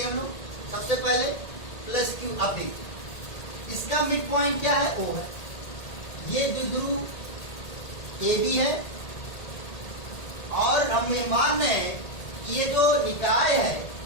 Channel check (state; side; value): late; right; 1.8 ms